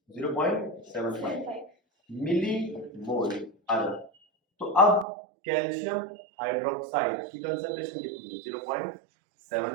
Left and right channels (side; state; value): left; drops out; at 5.1 s